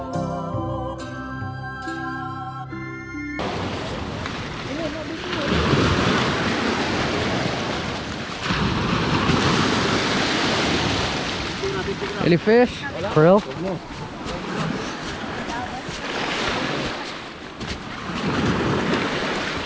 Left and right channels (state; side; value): identical; both; correlation 1.00